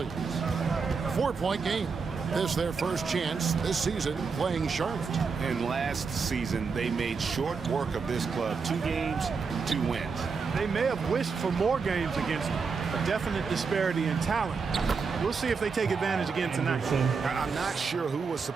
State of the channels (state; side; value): quieter; left; 5.2 dB